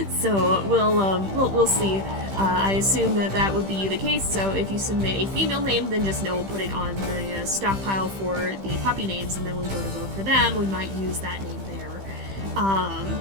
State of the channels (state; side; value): late; left; 15 ms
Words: So we'll see. I assume that would be the case, so if you submit a female name, then just know we'll put it on the stockpile for the puppy names, and then when we go to vote for them, we might use that name there.